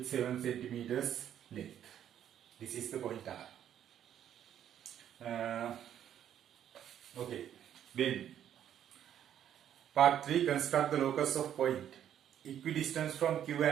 7 centimeters length. This is the point R. Okay, then part 3, construct the locus of point equidistance from Q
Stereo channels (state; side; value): quieter; left; 10.1 dB